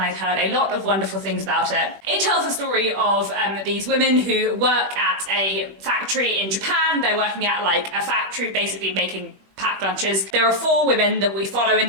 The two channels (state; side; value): late; left; 21 ms